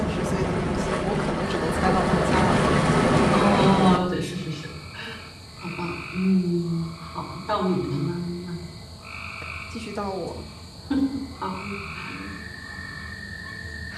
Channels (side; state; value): both; identical; correlation 1.00